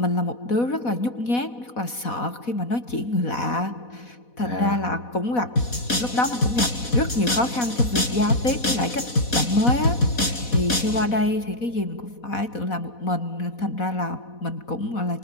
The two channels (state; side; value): late; right; 4.1 ms